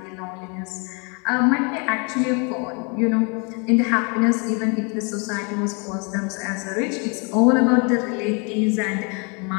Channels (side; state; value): right; quieter; 33.8 dB